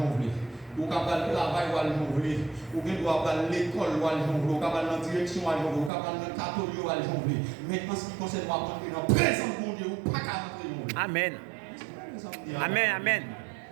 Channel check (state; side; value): drops out; left; at 5.9 s